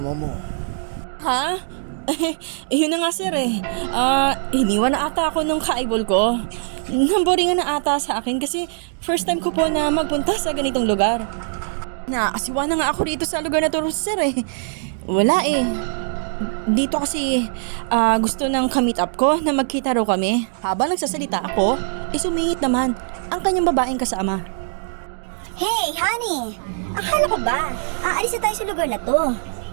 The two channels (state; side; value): silent; left; digital silence